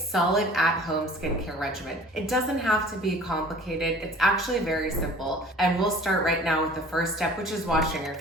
at-home skincare regimen. It doesn't have to be complicated. It's actually very simple. And we'll start right now with the first step, which is washing your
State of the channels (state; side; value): normal; both; correlation 0.47